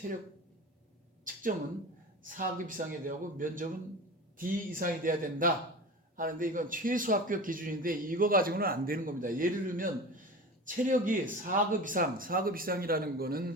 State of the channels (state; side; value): normal; both; correlation 0.33